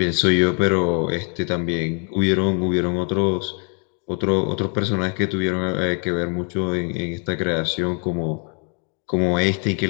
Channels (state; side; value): quieter; right; 39.9 dB